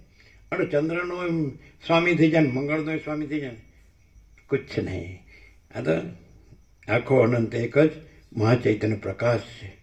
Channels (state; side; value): identical; both; correlation 1.00